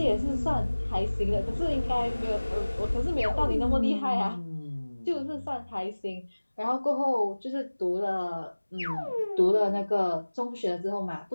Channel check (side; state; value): both; inverted; correlation -1.00